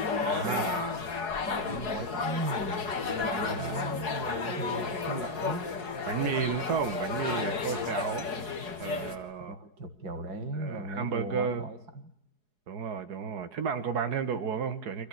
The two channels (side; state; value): left; late; 4.7 ms